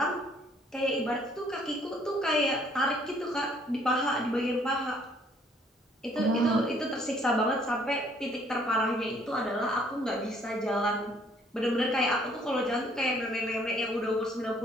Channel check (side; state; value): both; normal; correlation 0.62